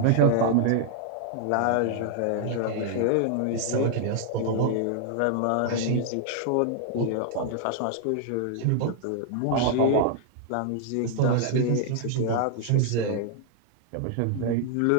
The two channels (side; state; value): both; different; correlation -0.01